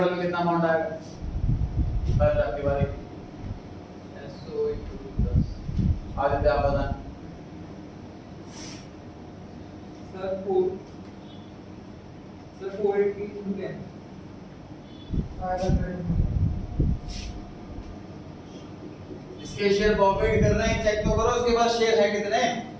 में कितना अमाउंट आएगा? बस आपकी बारी। SO into 10 आदित्य आप बताएं। सर 480 into 10 500 इसके शेयर प्रॉफिट कर रहे हैं, चेक तो करो इसके पास शेयर है कितने,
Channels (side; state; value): both; identical; correlation 1.00